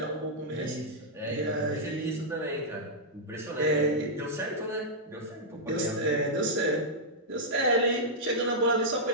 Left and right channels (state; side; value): normal; both; correlation -0.08